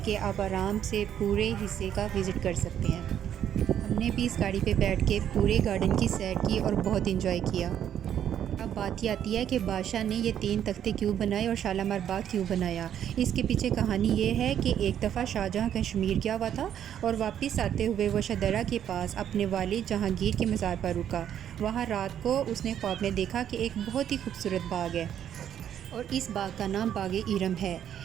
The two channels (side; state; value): left; quieter; 9.8 dB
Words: के आप आराम से पूरे हिस्से का विज़िट कर सकते हैं। हमने भी इस गाड़ी पे बैठ के पूरे गार्डन की सैर की और बहुत इंजॉय किया। अब बात ये आती है कि बादशाह ने ये 3 तख्ते क्यों बनाए और शालामार बाग क्यों बनाया। इसके पीछे कहानी ये है कि एक दफ़ा शाहजहाँ कश्मीर गया हुआ था और वापस आते हुए वो शदरा के पास अपने वालिद जहांगीर के मज़ार पर रुका। वहाँ रात को उसने ख्वाब में देखा कि एक बहुत ही खूबसूरत बाग है और इस बाग का नाम बाग इरम है।